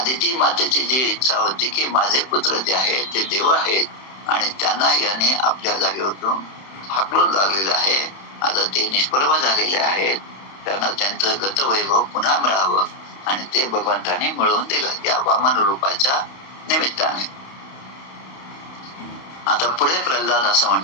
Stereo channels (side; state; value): right; late; 31 ms